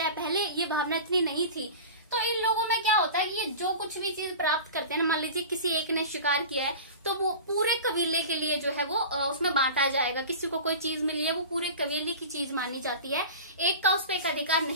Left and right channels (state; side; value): inverted; both; correlation -0.34